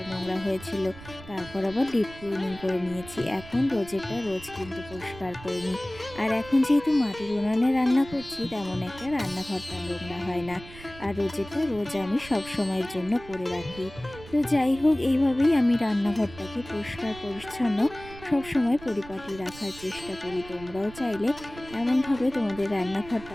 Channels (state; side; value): noise; right; rumble, 17 dB below the sound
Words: নোংরা হয়েছিল। তারপর আবার ডিপ ক্লিনিং করে নিয়েছি। এখন রোজেরটা রোজ কিন্তু পরিষ্কার করে নিই। আর এখন যেহেতু মাটির উনানে রান্না করছি, তেমন একটা রান্নাঘরটা নোংরা হয় না। আর রোজেরটা রোজ আমি সব সময়ের জন্য করে রাখি। তো যাই হোক, এইভাবেই আমি রান্নাঘরটাকে পরিষ্কার পরিচ্ছন্ন সবসময় পরিপাটি রাখার চেষ্টা করি। তোমরাও চাইলে এমনভাবে তোমাদের